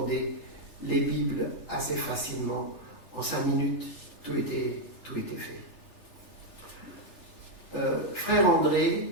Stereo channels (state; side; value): late; right; 3.4 ms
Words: les Bibles assez facilement. En 5 minutes, tout était fait. Frère